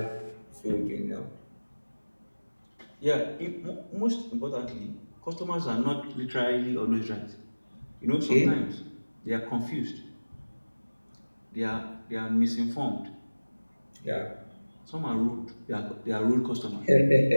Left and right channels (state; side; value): inverted; both; correlation -1.00